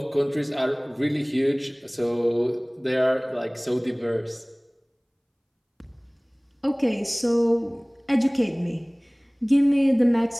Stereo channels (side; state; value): both; identical; correlation 1.00